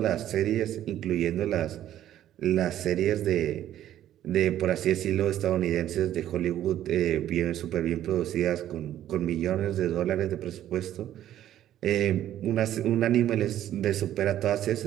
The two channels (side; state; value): left; quieter; 12.0 dB